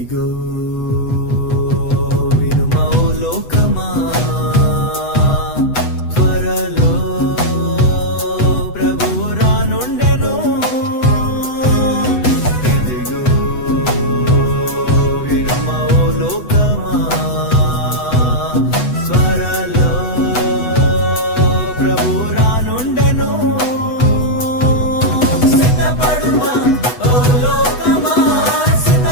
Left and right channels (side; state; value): right; late; 8.0 ms